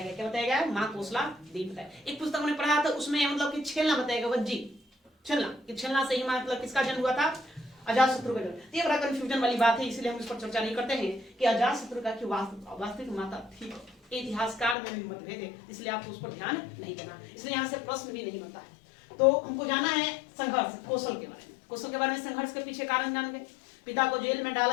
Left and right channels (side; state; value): right; drops out; at 14.8 s